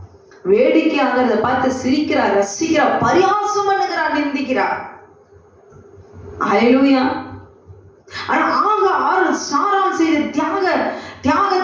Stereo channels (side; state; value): both; identical; correlation 1.00